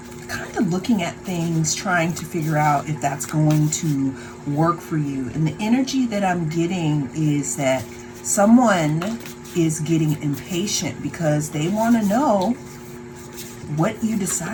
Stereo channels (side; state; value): both; identical; correlation 1.00